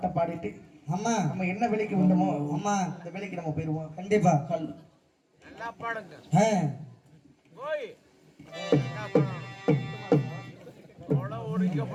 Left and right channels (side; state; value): both; identical; correlation 1.00